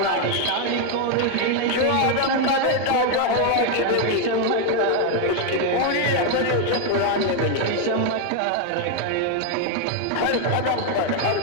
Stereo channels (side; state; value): both; different; correlation 0.01